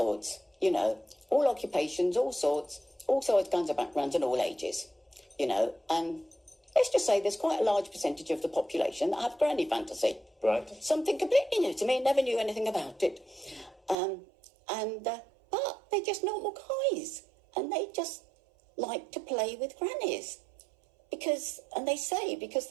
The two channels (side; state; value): left; drops out; at 14.0 s